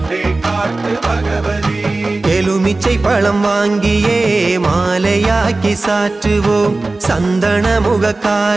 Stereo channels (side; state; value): left; quieter; 3.2 dB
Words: ഭഗവതി எலுமிச்சை பழம் வாங்கியே மாலையாக்கி சாற்றுவோம் சந்தன